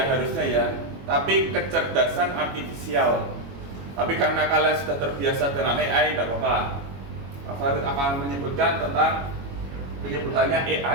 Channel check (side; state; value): left; late; 22 ms